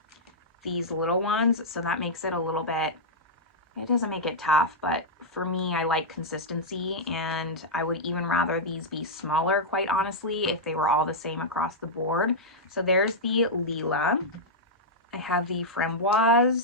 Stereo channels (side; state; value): both; normal; correlation -0.07